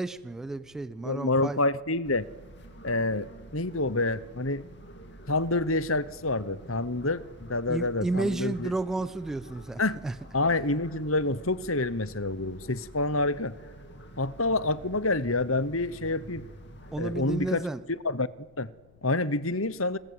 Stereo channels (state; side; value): noise; left; rumble, 29 dB below the sound